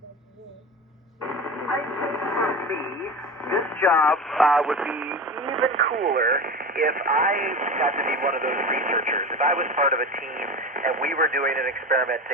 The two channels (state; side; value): normal; both; correlation 0.28